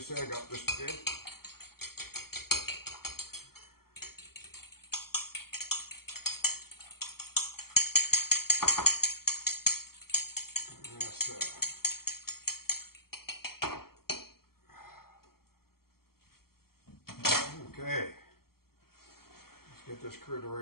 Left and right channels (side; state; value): right; late; 0.94 ms